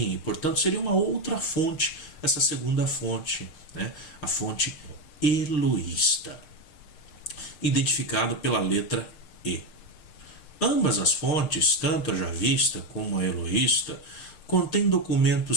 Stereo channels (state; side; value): late; right; 6.6 ms